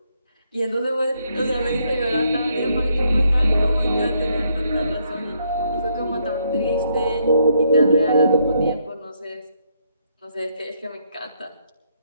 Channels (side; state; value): both; inverted; correlation -0.73